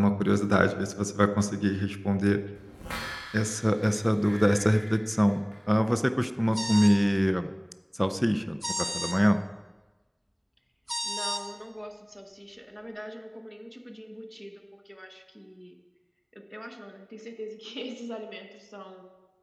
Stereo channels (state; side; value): identical; both; correlation 1.00